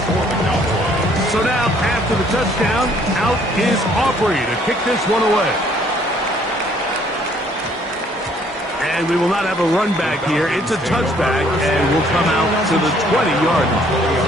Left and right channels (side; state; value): both; normal; correlation 0.62